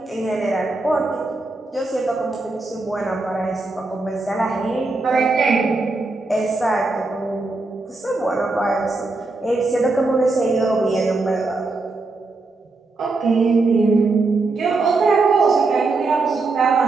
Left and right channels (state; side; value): quieter; left; 3.5 dB